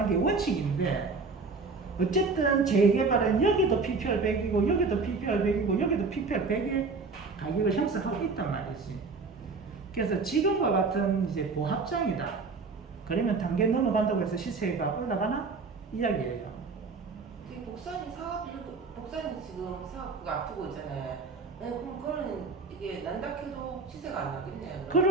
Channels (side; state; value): left; quieter; 4.3 dB